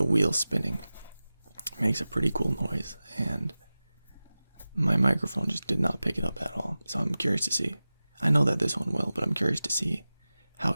wheel spinning makes a pretty cool noise, and my microphone just did not pick it up at all. So I'm curious to see. I know that this one will, but I'm curious to see how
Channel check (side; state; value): both; inverted; correlation -0.97